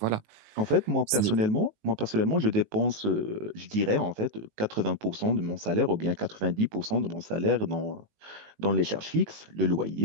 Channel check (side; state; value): left; late; 19 ms